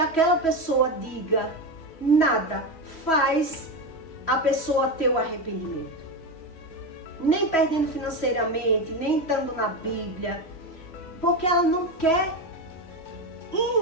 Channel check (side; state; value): right; late; 3.1 ms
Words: pessoa diga, nada faz a pessoa ter o arrependimento. Nem perdendo financeiramente, nem estando na Bíblia, porque ela não quer